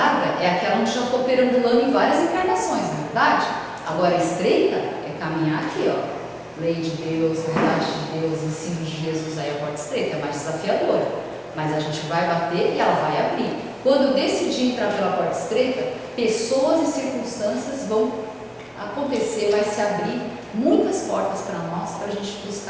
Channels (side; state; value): both; identical; correlation 1.00